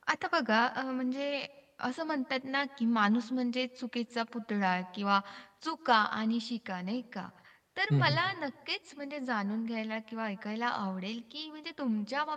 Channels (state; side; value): identical; both; correlation 1.00